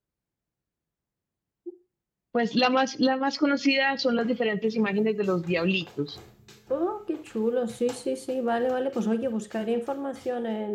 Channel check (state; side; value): identical; both; correlation 1.00